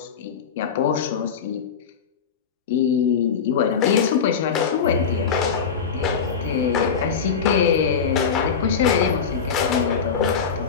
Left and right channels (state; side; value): quieter; right; 6.4 dB